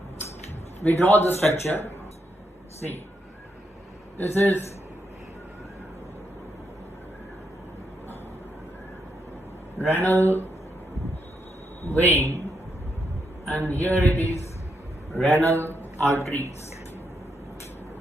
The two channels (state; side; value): normal; both; correlation 0.80